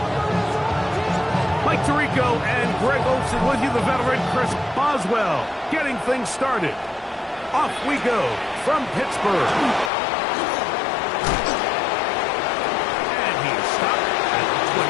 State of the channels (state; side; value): drops out; right; at 9.9 s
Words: Mike Tirico and Greg Olsen with you, the veteran Chris Boswell, getting things started. Off we go from Pittsburgh. And he's stopped at the